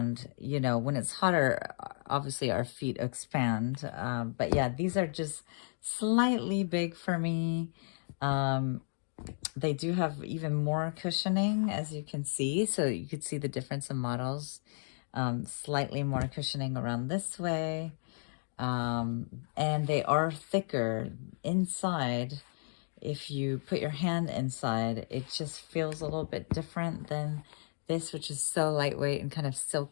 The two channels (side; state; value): right; silent; digital silence